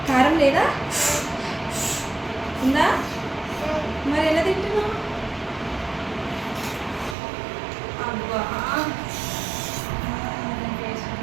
కారం లేదా? ఉందా? మరి ఎలా తింటున్నావు? అబ్బా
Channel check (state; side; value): drops out; left; at 7.2 s